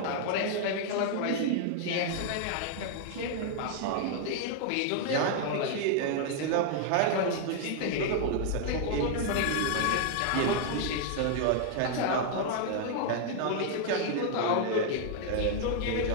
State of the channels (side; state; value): both; different; correlation 0.00